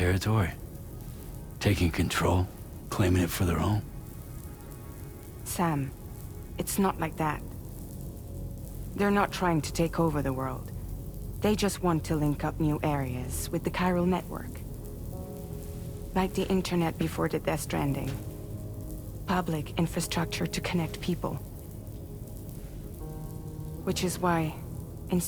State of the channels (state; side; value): identical; both; correlation 1.00